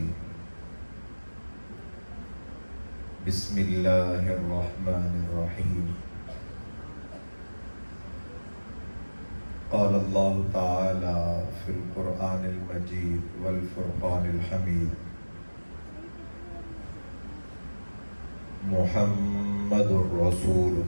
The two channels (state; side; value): inverted; both; correlation -1.00